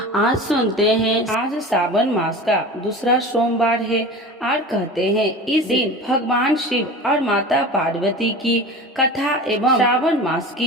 आज सुनते हैं। आज सावन मास का दूसरा सोमवार है और कहते हैं इस दिन भगवान शिव और माता पार्वती की कथा एवं श्रावण मास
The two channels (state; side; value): normal; both; correlation 0.34